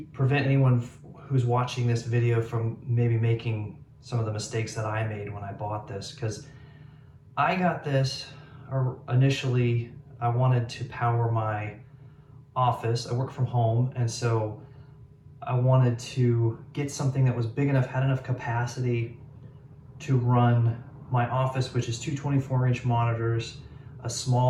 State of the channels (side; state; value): both; identical; correlation 1.00